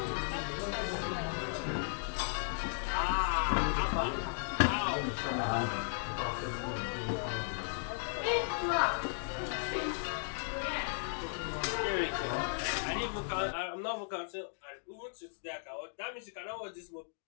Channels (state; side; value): silent; right; digital silence